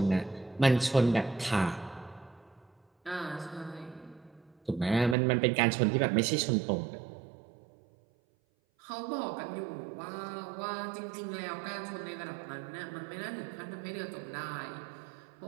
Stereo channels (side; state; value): left; drops out; at 5.2 s